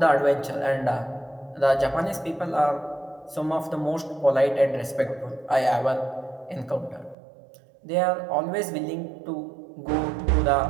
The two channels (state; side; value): drops out; left; at 7.2 s